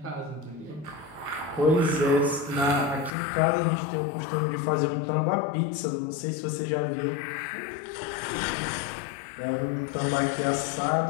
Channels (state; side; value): drops out; right; at 3.1 s